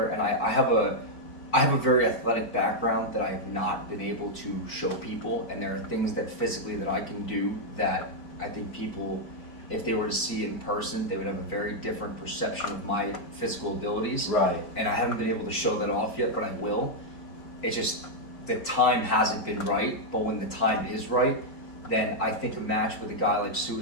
and I have a very athletic background that I have not been able to show people, and there are things that physically that I can do that I think people, if they were to see it in person, they would have a very different perception of my physical abilities. Right. And I haven't been able to show that off yet, but I will. It's just the time hasn't been right, but when the time is right, then I think a match with a guy like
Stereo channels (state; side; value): late; right; 4.5 ms